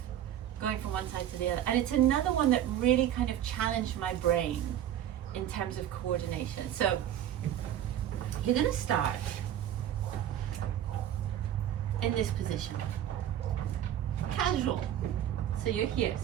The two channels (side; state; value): left; quieter; 11.0 dB